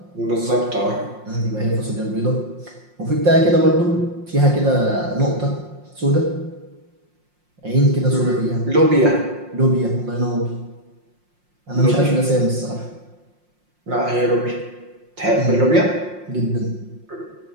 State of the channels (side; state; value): left; late; 5.6 ms